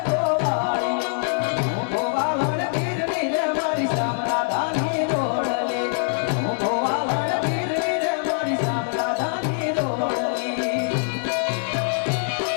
गोवालियो हूँ गोवालन गिरनी रे मारी सामना धानी जोड़ली हूँ गोवालन गिरनी रे मारी सामना धानी जोड़ली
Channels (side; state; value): right; silent; digital silence